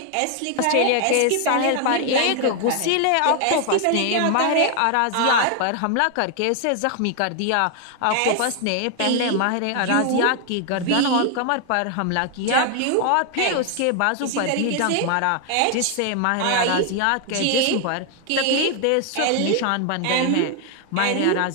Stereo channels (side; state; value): both; different; correlation 0.00